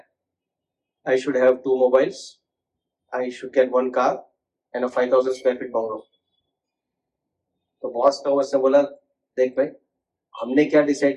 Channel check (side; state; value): both; identical; correlation 1.00